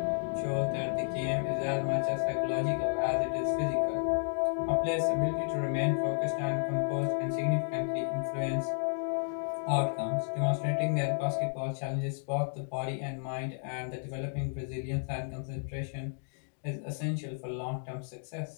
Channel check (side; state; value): right; silent; digital silence